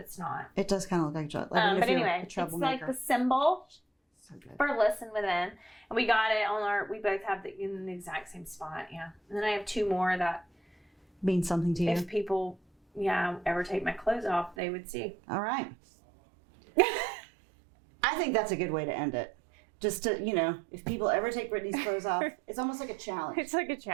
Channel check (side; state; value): left; drops out; at 14.6 s